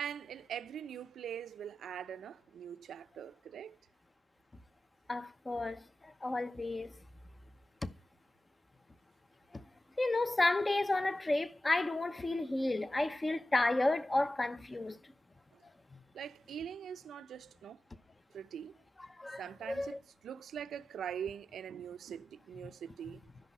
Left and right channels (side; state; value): both; normal; correlation 0.93